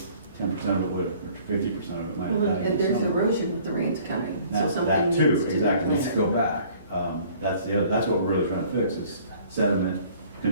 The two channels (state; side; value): inverted; both; correlation -0.54